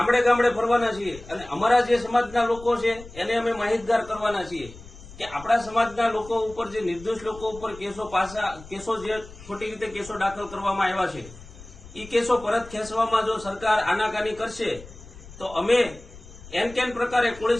ગામડે ફરવાના છીએ અને અમારા જે સમાજના લોકો છે એને અમે માહિતગાર કરવાના છીએ કે આપણા સમાજના લોકો ઉપર જે નિર્દોષ લોકો ઉપર કેસો જે ખોટી રીતે કેસો દાખલ કરવામાં આવ્યા છે એ કેસો પરત ખેંચવામાં જો સરકાર આનાકાની કરશે તો અમે કેન પ્રકારે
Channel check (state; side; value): noise; left; rumble, 18 dB below the sound